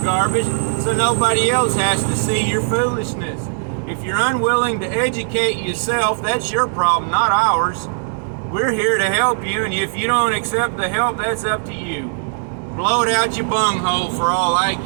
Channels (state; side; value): silent; left; digital silence